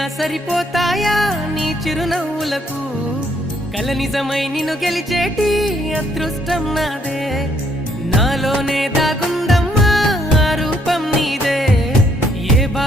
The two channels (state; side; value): normal; both; correlation 0.69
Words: సరిపోతాయా నీ చిరునవ్వులకు కల నిజమై నిన్ను గెలిచేటి అదృష్టం నాదే నాలోనే దాగుందమ్మా ఆ రూపం నీదే ఏ